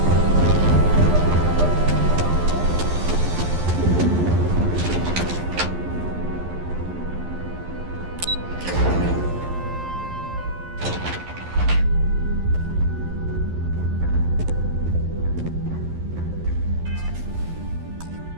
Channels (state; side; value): late; left; 11 ms